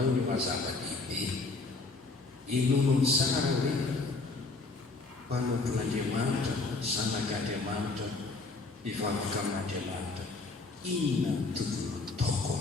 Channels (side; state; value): right; quieter; 3.6 dB